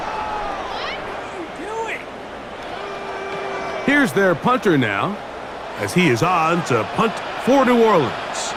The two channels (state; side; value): identical; both; correlation 1.00